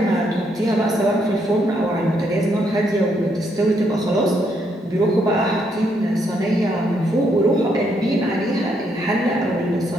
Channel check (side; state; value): both; normal; correlation 0.75